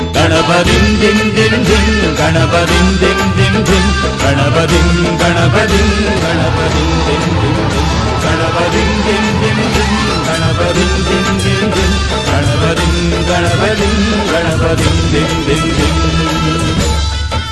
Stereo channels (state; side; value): identical; both; correlation 1.00